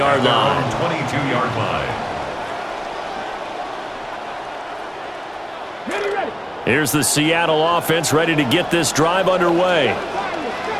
line. 22-yard line. Here's the Seattle offense ready to get this drive underway.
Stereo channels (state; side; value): identical; both; correlation 1.00